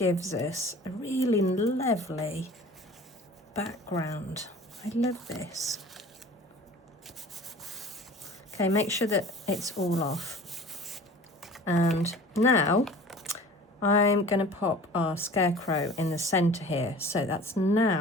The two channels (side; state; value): both; normal; correlation 0.43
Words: us a really lovely background. I love this. Okay, make sure that it's all off. And now I'm going to pop our scarecrow in the center here. So that's